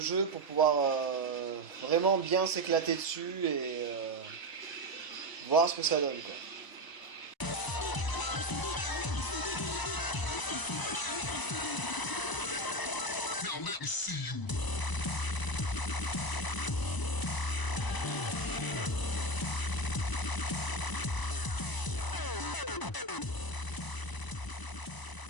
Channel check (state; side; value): late; right; 1.0 ms